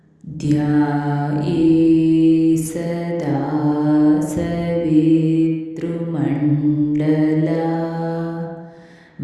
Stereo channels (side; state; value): both; identical; correlation 1.00